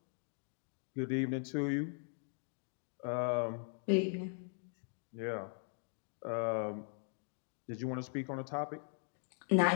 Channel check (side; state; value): right; silent; 51 dB below the other